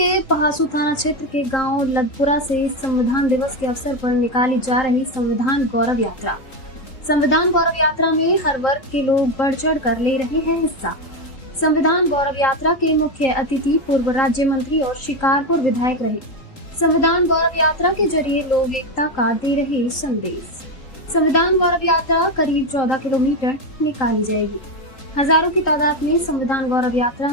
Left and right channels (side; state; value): right; late; 3.8 ms